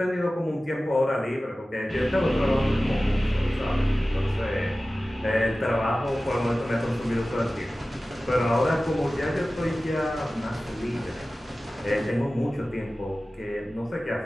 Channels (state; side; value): normal; both; correlation 0.96